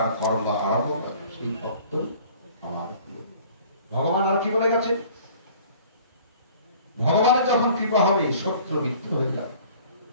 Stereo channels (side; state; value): both; inverted; correlation -0.50